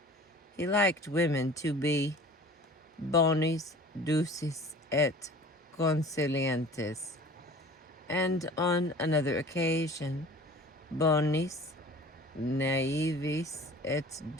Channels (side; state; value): both; normal; correlation 0.44